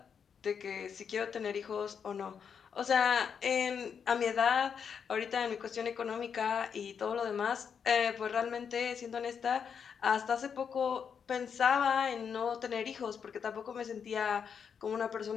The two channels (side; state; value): right; quieter; 7.0 dB